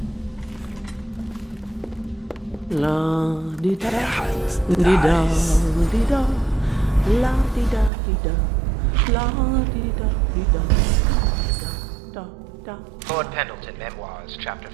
La di da di da di da la di da di da la di da di da da da. Lord Pendleton Memoirs, Chapter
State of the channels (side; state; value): left; drops out; at 7.9 s